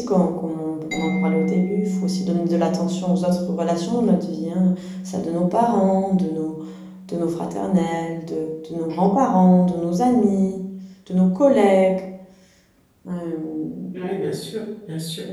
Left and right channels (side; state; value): both; identical; correlation 1.00